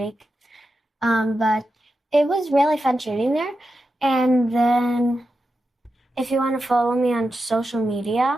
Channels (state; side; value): normal; both; correlation 0.89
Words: But it was really fun shooting there. And then if you want to follow me on social